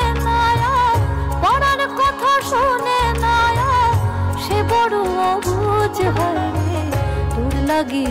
না, পরাণ কথা শোনে না, সে বড় অবুঝ হয় রে। তোর লাগি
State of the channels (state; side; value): identical; both; correlation 1.00